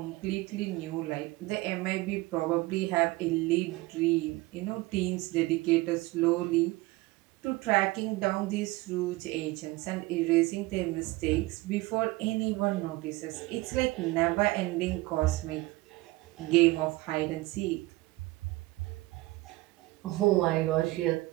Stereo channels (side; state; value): left; quieter; 20.6 dB